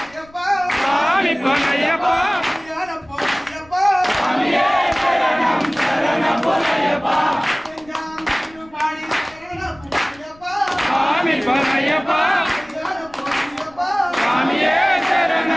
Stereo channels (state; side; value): noise; left; rumble, 26 dB below the sound